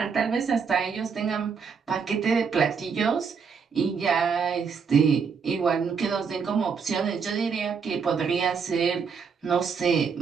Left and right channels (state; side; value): quieter; left; 6.0 dB